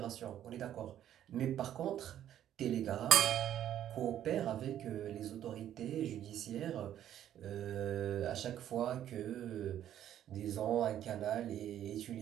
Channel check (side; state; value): left; quieter; 11.1 dB